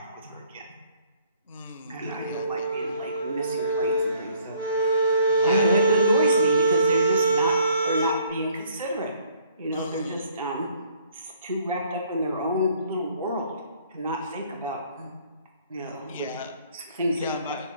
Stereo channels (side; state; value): both; inverted; correlation -0.61